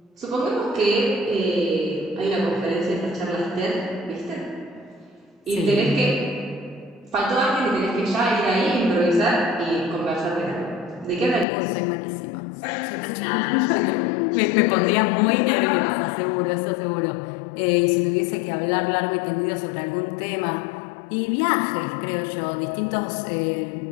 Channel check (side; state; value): right; drops out; at 11.5 s